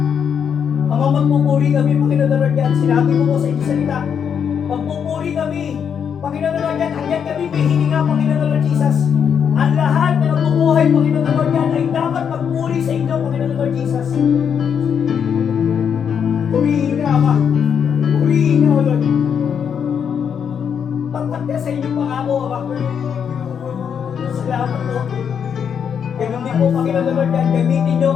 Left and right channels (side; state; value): right; quieter; 7.5 dB